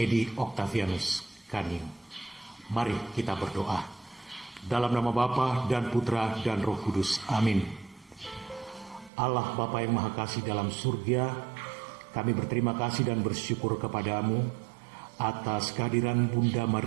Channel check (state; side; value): drops out; left; at 9.1 s